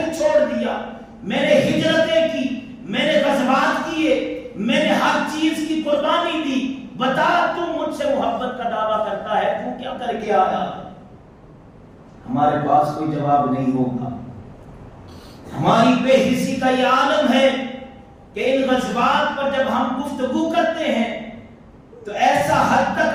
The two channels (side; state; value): both; identical; correlation 1.00